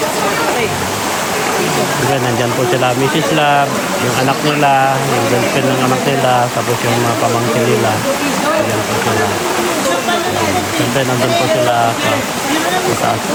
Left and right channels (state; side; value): identical; both; correlation 1.00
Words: Diba, nandyan po sila Mrs. Love, yung anak nila, yung girlfriend ng anak nila, tapos yung mga pamangkin nila. Nandyan po sila. Siyempre nandun po sila sa taas